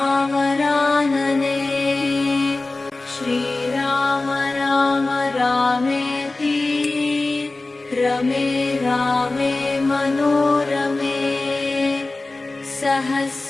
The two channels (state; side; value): quieter; right; 3.2 dB